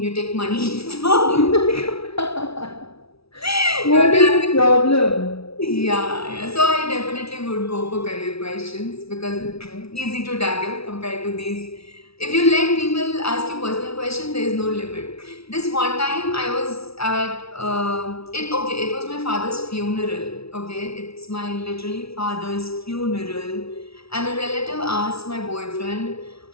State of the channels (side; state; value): right; late; 0.76 ms